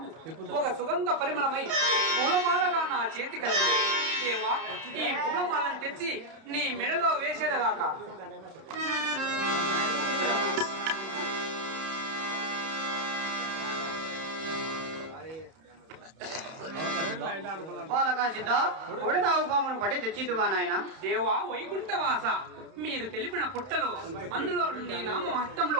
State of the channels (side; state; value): left; late; 31 ms